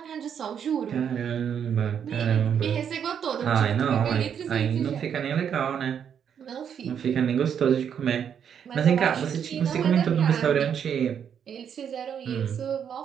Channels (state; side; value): quieter; left; 8.1 dB